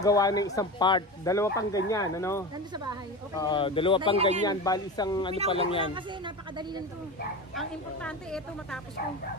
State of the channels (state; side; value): normal; both; correlation 0.26